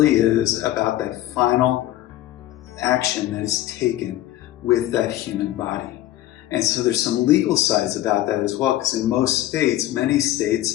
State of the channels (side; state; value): right; quieter; 14.6 dB